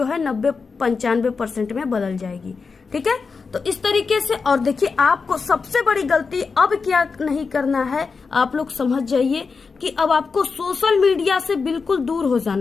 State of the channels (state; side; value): quieter; right; 4.9 dB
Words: है 90-95% में बदल जाएगी, ठीक है। तो इस तरीके से, और देखिए, आपको सबसे बड़ी गलती अब क्या नहीं करना है, आप लोग समझ जाइए कि अब आपको सोशल मीडिया से बिल्कुल दूर हो